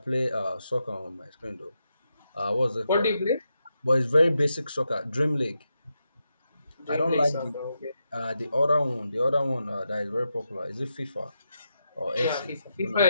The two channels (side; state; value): both; inverted; correlation -0.85